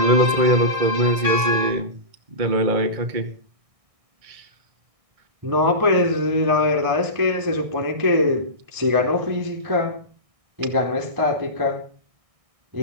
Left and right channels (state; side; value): late; left; 1.6 ms